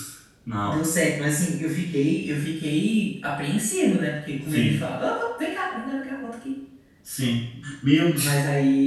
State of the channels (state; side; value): identical; both; correlation 1.00